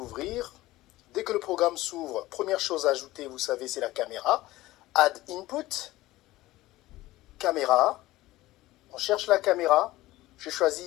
Dès que le programme s'ouvre, première chose à ajouter, vous savez, c'est la caméra. Add Input, caméra. On cherche la caméra. J'ai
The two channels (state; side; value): quieter; right; 17.4 dB